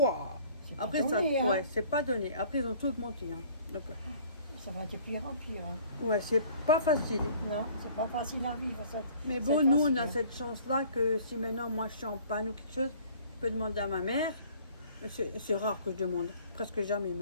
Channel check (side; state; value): both; inverted; correlation -0.53